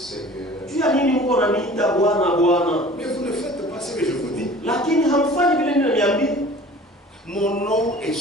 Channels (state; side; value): normal; both; correlation 0.45